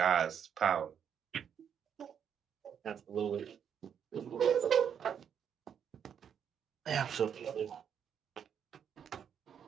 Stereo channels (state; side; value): quieter; left; 8.1 dB